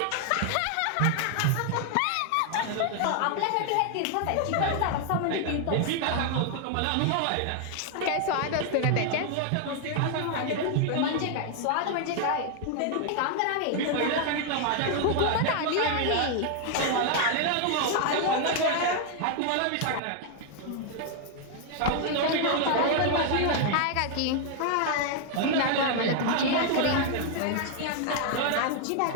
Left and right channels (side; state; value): both; different; correlation 0.00